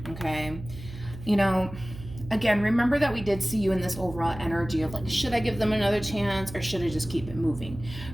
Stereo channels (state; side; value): noise; right; hum, 13 dB below the sound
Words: okay? You know, again, remember that we did see you in this overall energy of like, should I give them another chance or should I just keep it moving?